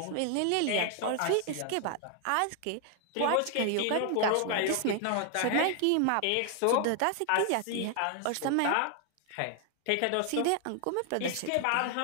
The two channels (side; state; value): both; different; correlation 0.00